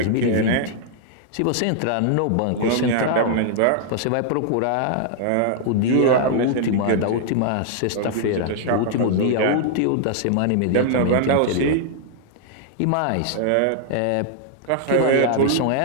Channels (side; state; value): both; different; correlation -0.01